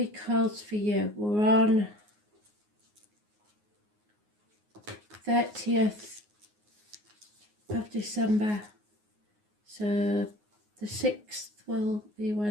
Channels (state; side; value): late; left; 9.6 ms